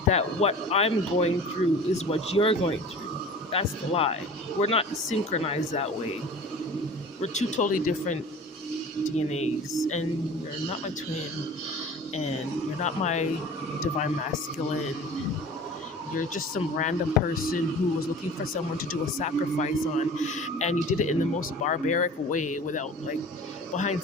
that what I'm going through is what you're going through. That's the lie. We're not synchronized that way. We're two totally different DNAs, and you're not my twin, and you're not my divine masculine. You're just some random person who was looking for someone to do a sacrifice on, and you did it in the most barbaric way without, like, behind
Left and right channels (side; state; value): both; normal; correlation 0.41